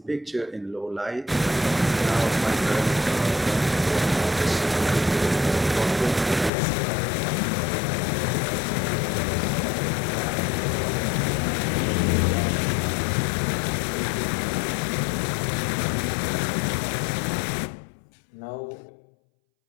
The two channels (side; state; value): right; drops out; at 6.5 s